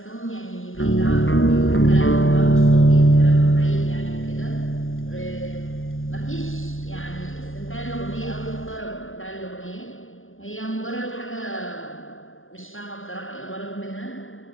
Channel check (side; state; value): right; late; 0.58 ms